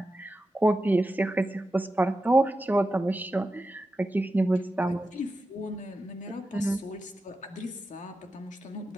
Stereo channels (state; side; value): normal; both; correlation 0.91